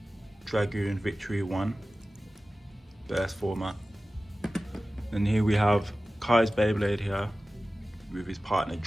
Dragoon Victory 1 burst format, and here we have Kai's Beyblade here with his partner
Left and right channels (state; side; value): normal; both; correlation 0.96